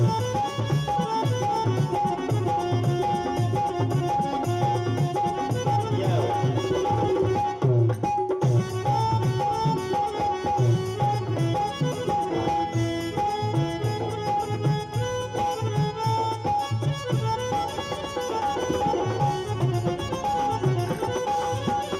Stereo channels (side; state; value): both; identical; correlation 1.00